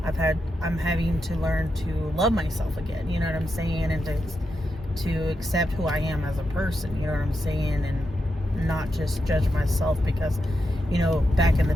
I'm having to learn to love myself again. You know what I'm saying? And to accept who I am as a person. You know what I'm saying? And not just judge myself, because, you know, back in the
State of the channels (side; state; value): both; normal; correlation 0.86